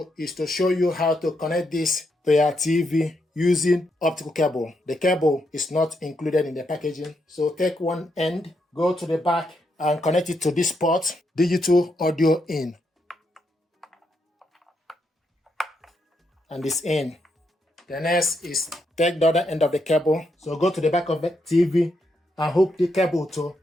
is to show you how to connect this to your TV using optical cable. The cable is not included in the packaging, so take one end, go to the back and connect it to this port, digital audio in, and this in. The next is take the other end of the cable, so go to the back of the TV and hook the cable to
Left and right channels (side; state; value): both; normal; correlation 0.80